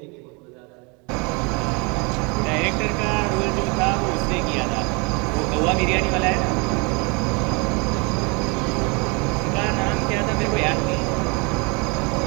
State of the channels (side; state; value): left; quieter; 30.5 dB